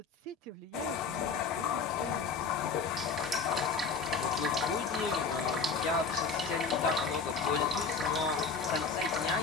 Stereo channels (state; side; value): quieter; right; 5.1 dB